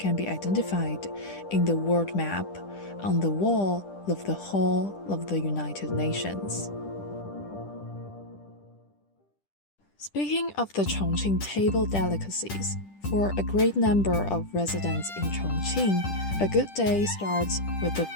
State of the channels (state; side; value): late; right; 10 ms